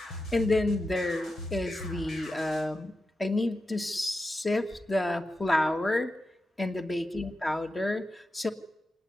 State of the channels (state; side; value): normal; both; correlation 0.90